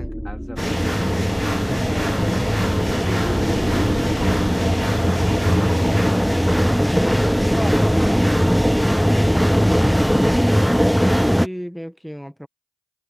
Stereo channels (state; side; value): identical; both; correlation 1.00